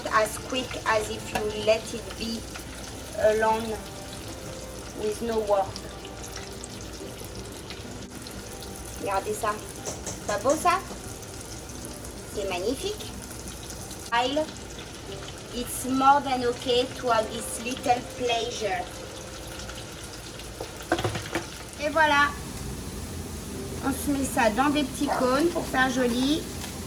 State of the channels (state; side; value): identical; both; correlation 1.00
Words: as quick as if you let it be alone with no work. Regardez ça. Pas beau ça? C'est magnifique. It's more than okay to have this little pleasure. Et voilà. On se met ça dans des petits cônes pour faire joli.